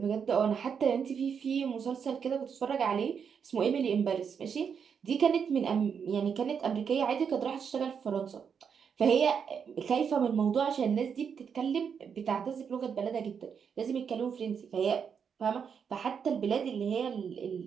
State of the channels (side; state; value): left; quieter; 6.9 dB